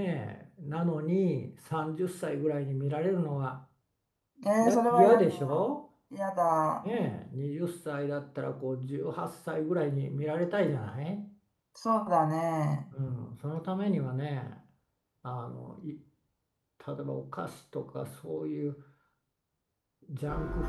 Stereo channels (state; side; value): identical; both; correlation 1.00